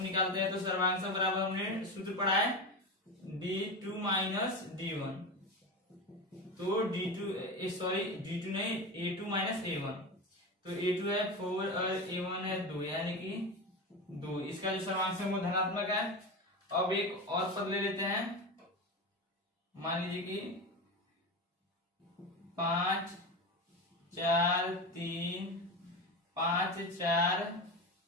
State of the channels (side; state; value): both; normal; correlation 0.22